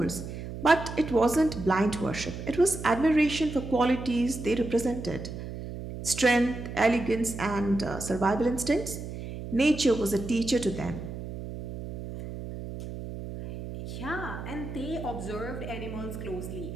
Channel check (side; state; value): right; noise; hum, 9 dB below the sound